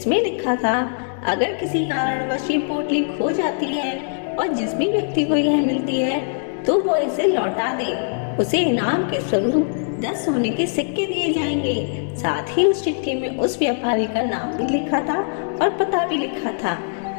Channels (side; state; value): right; silent; digital silence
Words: लिखा था, अगर किसी कारणवश ये पोटली खो जाती है और जिस भी व्यक्ति को यह मिलती है तो वो इसे लौटा दे, उसे इनाम के स्वरूप 10 सोने के सिक्के दिए जाएंगे। साथ ही उस चिट्ठी में उस व्यापारी का नाम भी लिखा था और पता भी लिखा था